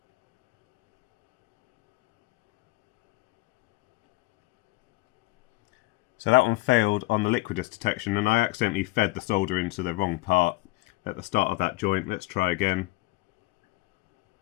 So that one failed on the liquidus detection, and I accidentally fed the solder into the wrong part at the start of that joint. Let's try again.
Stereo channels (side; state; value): right; quieter; 21.5 dB